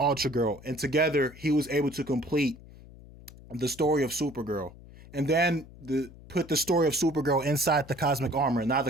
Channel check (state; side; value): noise; left; hum, 20 dB below the sound